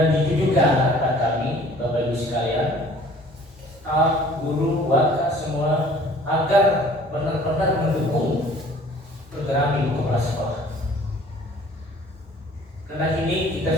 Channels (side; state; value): both; normal; correlation 0.52